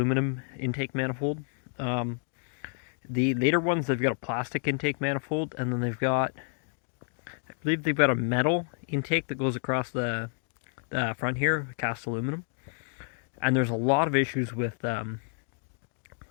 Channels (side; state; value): right; silent; 57 dB below the other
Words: intake manifold. The later ones, they've got a plastic intake manifold, and then they've got, I believe they've got a metal intake that goes across the front here, cast aluminum. And there's a lot of issues with